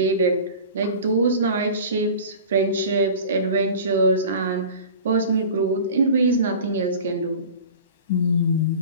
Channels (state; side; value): inverted; both; correlation -0.38